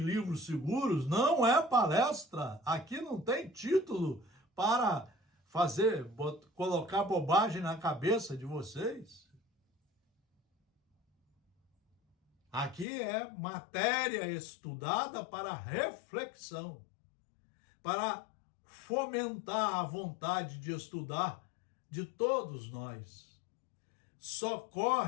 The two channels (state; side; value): drops out; right; at 12.9 s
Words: seguros, não é palestra, aqui não tem título para colocar bobagem na cabeça de vocês. Aqui é matéria estudada para reflexão, para fomentar a vontade de estudar de todos nós.